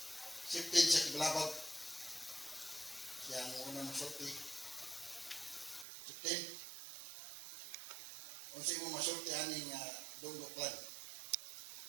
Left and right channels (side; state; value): left; drops out; at 5.9 s